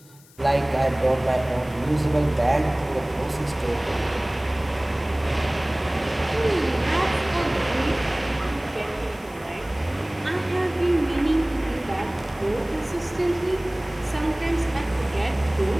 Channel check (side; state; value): left; noise; hiss, 26 dB below the sound